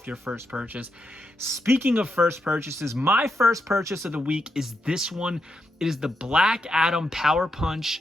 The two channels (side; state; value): both; normal; correlation 0.83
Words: your first purchase. Speaking of first purchases, my first purchase of the week is this one. It is the Black Adam Power